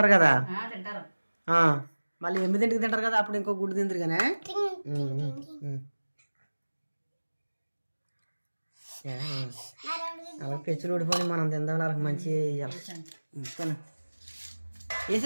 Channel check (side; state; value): both; inverted; correlation -1.00